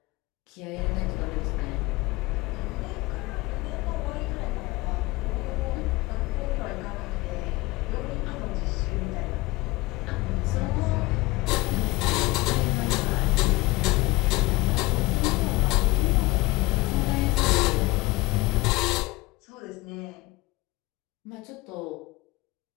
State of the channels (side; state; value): right; quieter; 21.6 dB